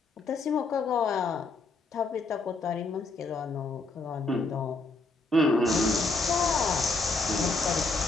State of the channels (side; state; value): right; quieter; 3.5 dB